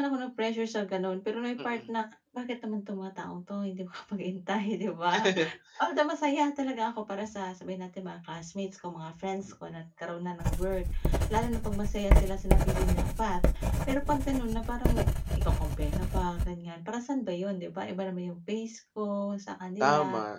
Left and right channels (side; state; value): both; identical; correlation 1.00